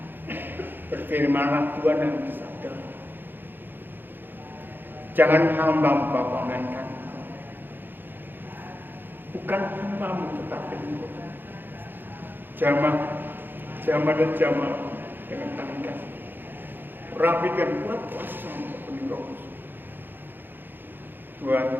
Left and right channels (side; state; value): left; late; 0.096 ms